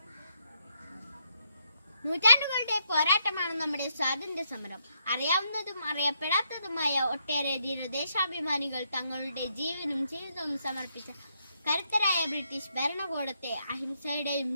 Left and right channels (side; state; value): both; inverted; correlation -0.77